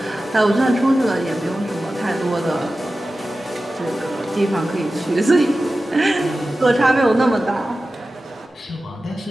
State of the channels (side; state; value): both; normal; correlation 0.94